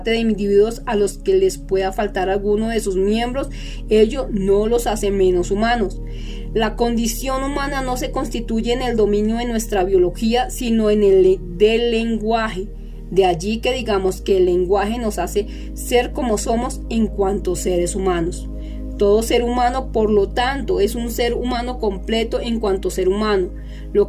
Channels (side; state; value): both; identical; correlation 1.00